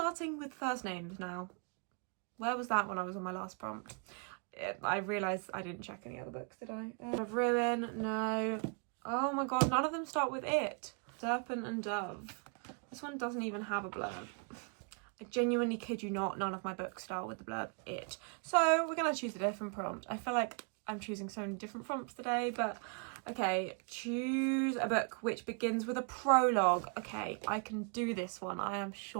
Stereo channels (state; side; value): quieter; left; 37.5 dB